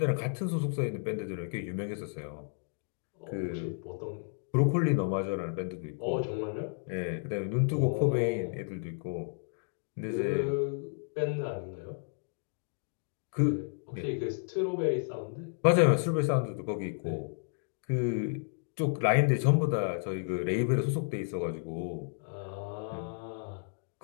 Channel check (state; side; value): silent; right; digital silence